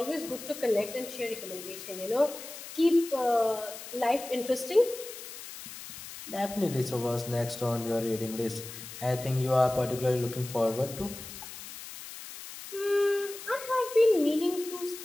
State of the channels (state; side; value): noise; left; hiss, 12 dB below the sound